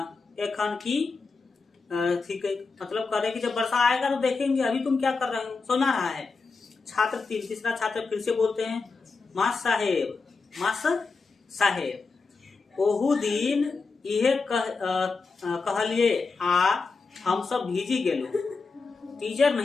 एखन की ठीक है, मतलब कह रहे कि जब वर्षा आएगा तो देखेंगे, अभी तुम क्या कर रहे हो, सुना रहा है। छात्र 3, तीसरा छात्र फिर से बोलते हैं मास्टर साहेब ओहू दिन इहे कहलिए आ हम सब भीजी गेलो, टीचर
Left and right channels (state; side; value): quieter; right; 4.4 dB